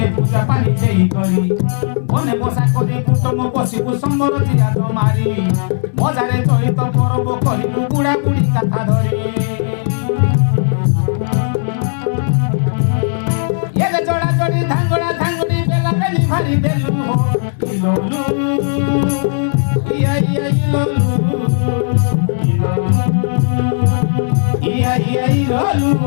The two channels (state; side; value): silent; right; digital silence